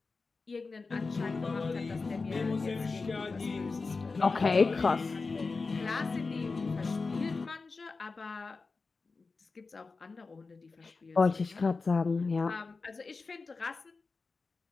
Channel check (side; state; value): right; quieter; 4.1 dB